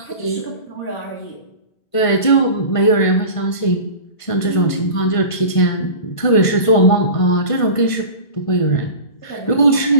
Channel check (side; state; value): right; late; 1.5 ms